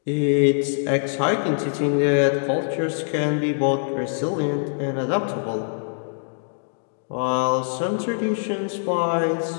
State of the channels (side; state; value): right; silent; digital silence